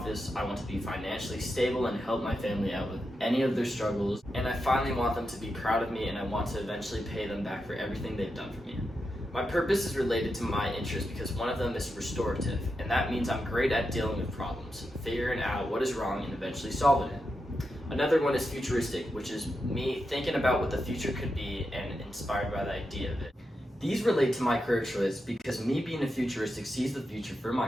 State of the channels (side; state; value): both; normal; correlation 0.87